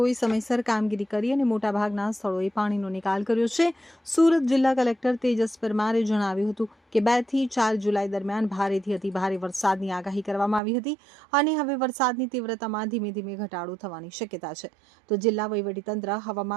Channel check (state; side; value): drops out; left; at 10.6 s